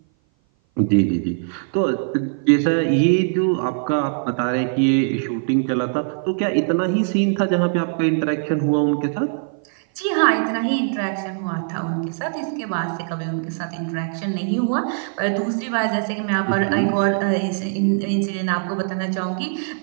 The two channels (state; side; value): silent; left; 57 dB below the other